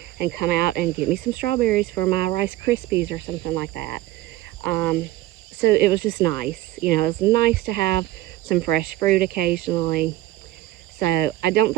and come out and get me some strawberries for my Rice Krispies or something like that. So it was just nice, you know, it was nice to have some fresh fruit occasionally. So I don't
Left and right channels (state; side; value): quieter; left; 16.1 dB